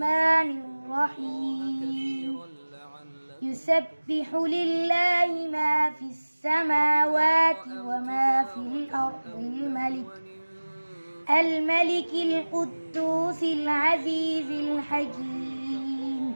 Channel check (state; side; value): inverted; both; correlation -1.00